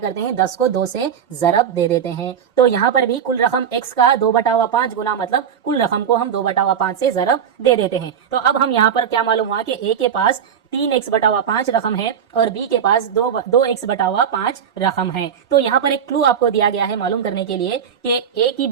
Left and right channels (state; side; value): quieter; left; 8.0 dB